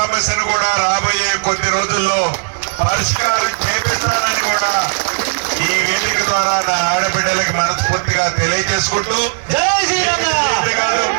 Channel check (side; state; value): left; silent; digital silence